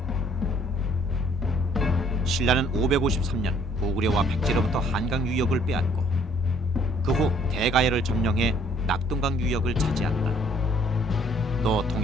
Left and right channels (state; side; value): normal; both; correlation 0.61